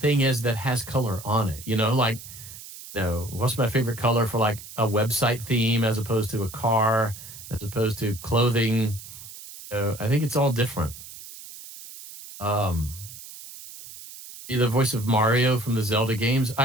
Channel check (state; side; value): noise; right; hiss, 15 dB below the sound